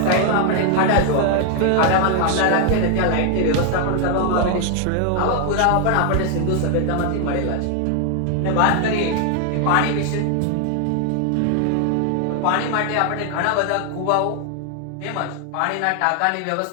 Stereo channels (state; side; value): different; both; correlation 0.00